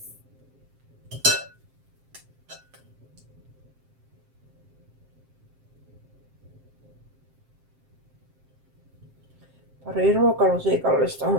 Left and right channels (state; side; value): late; left; 7.6 ms